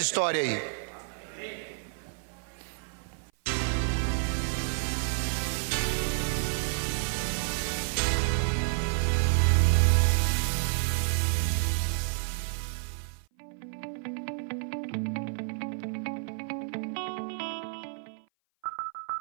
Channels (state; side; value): silent; left; 55 dB below the other